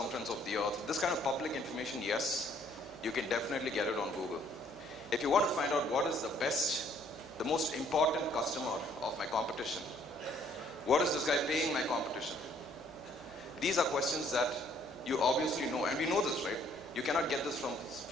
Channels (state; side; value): noise; left; hum, 24 dB below the sound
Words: of the earth, this kind of public information, yes, you can definitely get it on Google. If you want to find out what is the most important customer of my competition, what is this guy paying my competition? These are questions that you obviously know, and we know this, right? You cannot get this